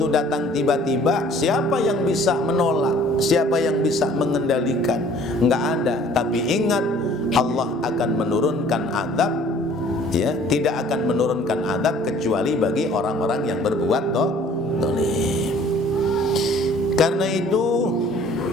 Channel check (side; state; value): both; normal; correlation 0.53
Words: datang tiba-tiba, siapa yang bisa menolak? Siapa yang bisa mengendalikan? Enggak ada. Tapi ingat, Allah akan menurunkan azab, ya, tidak akan menurunkan azab kecuali bagi orang-orang yang berbuat zalim. Karena itu,